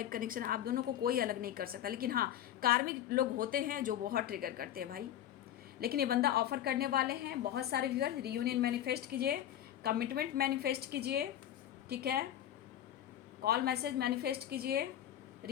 कनेक्शन, आप दोनों को कोई अलग नहीं कर सकता, लेकिन हाँ कार्मिक लोग होते हैं जो बहुत ट्रिगर करते हैं भाई। लेकिन ये बंदा ऑफर करने वाले हैं। बहुत सारे व्यूअर्स रियूनियन मैनिफेस्ट कीजिए, कमिटमेंट मैनिफेस्ट कीजिए, ठीक है, कॉल मैसेज मैनिफेस्ट कीजिए।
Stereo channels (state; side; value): quieter; right; 11.4 dB